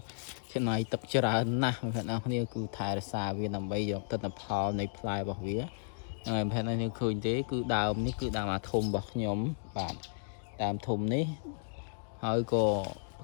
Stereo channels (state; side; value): silent; right; digital silence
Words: ចំណាយទឹកច្រើនណាស់បងប្អូនគ្នាគឺថែរក្សាវាដើម្បីយកទិន្នផលនៃផ្លែរបស់វាហើយប្រហែលនេះឃើញទេគឺដើមនេះគឺដើមអាធំរបស់ខ្ញុំបាទដើមធំនេះហើយក៏ផ